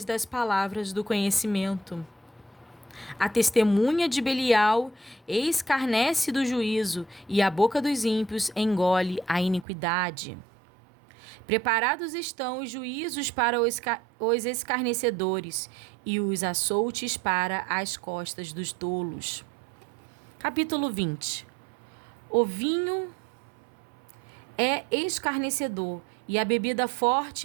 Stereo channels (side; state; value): left; drops out; at 9.7 s